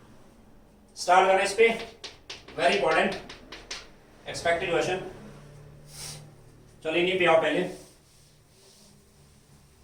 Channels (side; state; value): both; identical; correlation 1.00